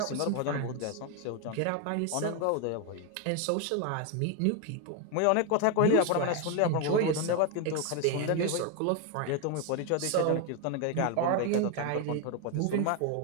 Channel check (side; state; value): both; different; correlation 0.01